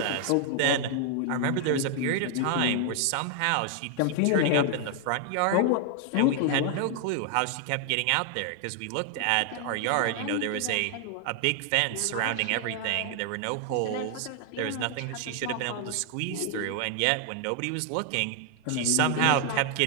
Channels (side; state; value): both; different; correlation 0.00